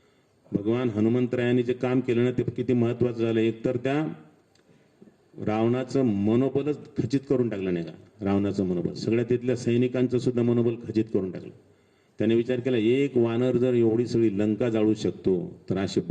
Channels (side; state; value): both; identical; correlation 1.00